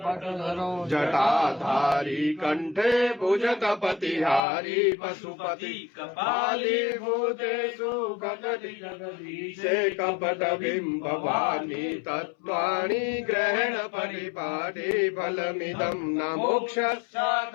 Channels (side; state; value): right; drops out; at 4.4 s